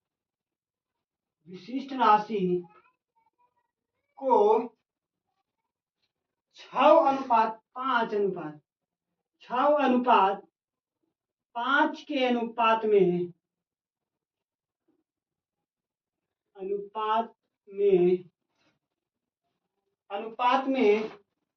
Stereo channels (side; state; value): both; identical; correlation 1.00